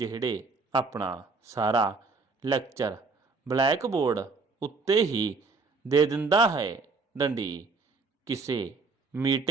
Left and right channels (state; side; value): quieter; left; 4.3 dB